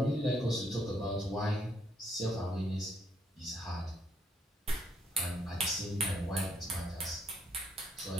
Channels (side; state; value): both; normal; correlation 0.71